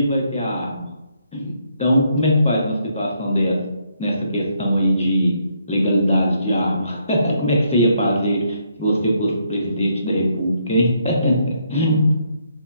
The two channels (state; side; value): inverted; both; correlation -0.73